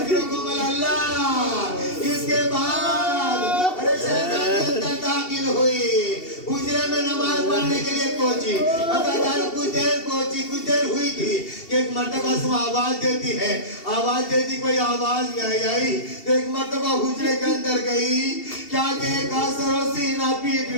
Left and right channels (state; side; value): late; right; 2.7 ms